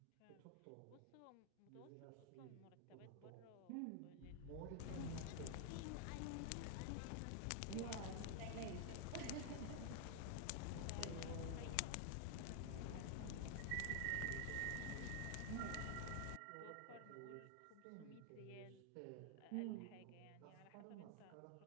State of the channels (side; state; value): both; different; correlation 0.00